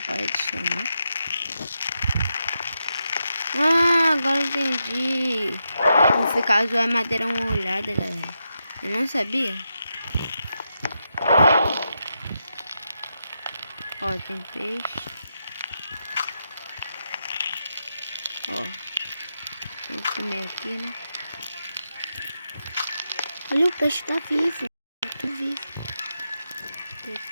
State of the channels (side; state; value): both; inverted; correlation -0.85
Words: pode chamar. Ah, agora entendi. Vou ficar zoando madeira uma olhada, galera. Eu não sabia. Ó, tem peixe. Ó, vou comer aqui, né? Olha, o peixe tá vivo. Tô vivo. Vou